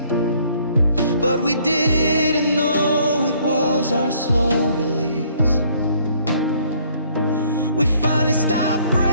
but we didn't know it was our slow release. We finally stopped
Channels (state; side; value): inverted; both; correlation -0.63